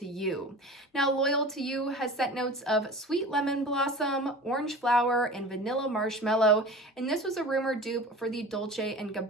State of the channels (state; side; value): normal; both; correlation 0.37